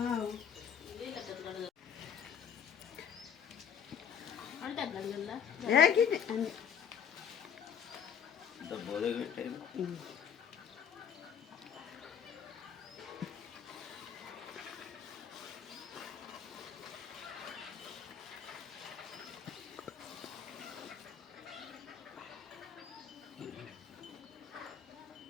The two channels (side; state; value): right; quieter; 7.9 dB